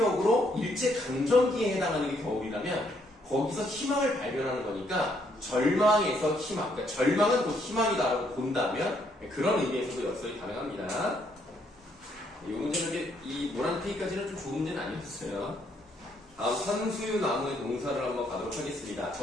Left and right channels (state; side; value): normal; both; correlation 0.71